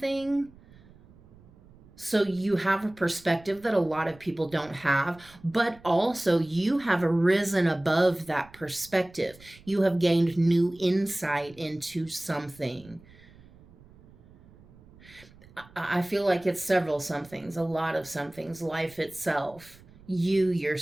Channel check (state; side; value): noise; right; rumble, 24 dB below the sound